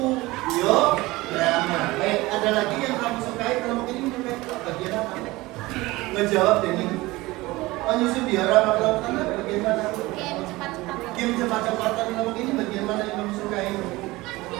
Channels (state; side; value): quieter; left; 20.3 dB